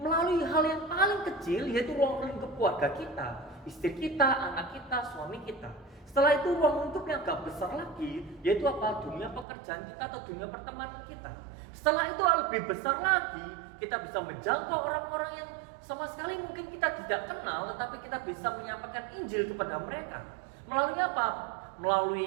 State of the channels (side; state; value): left; drops out; at 9.5 s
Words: hal yang paling kecil, yaitu ruang lingkup keluarga kita, istri kita, anak kita, suami kita. Setelah itu ruang lingkup yang agak besar lagi, yaitu apa? Dunia pekerjaan kita atau dunia pertemanan kita. Setelah itu lebih besar lagi, kita bisa menjangkau orang-orang yang sama sekali mungkin kita tidak kenal, tetapi kita bisa menyampaikan Injil kepada mereka. Melalui apa?